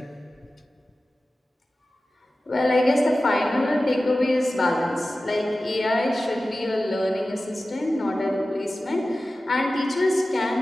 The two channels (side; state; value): both; normal; correlation 0.95